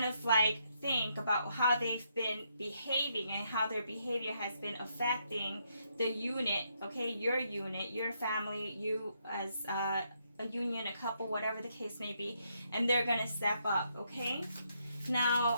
of like think about how they've been behaving and how their behavior has been affecting the unit, okay? Your family, you as a union, a couple, whatever the case may be, and they're going to step up, okay? Now,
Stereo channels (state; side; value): inverted; both; correlation -0.77